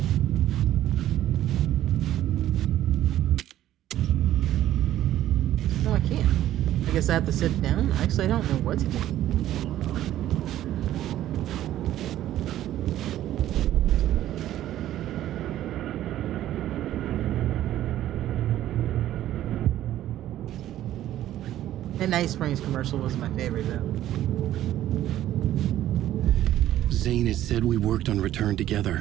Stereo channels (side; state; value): left; quieter; 13.0 dB